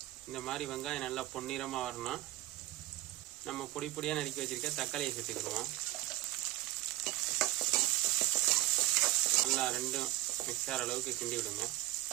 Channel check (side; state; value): left; quieter; 16.9 dB